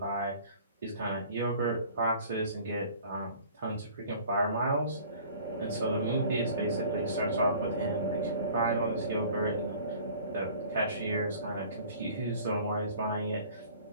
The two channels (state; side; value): inverted; both; correlation -0.48